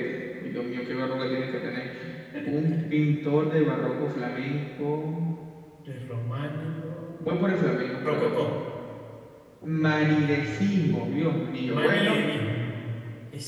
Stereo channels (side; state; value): both; identical; correlation 1.00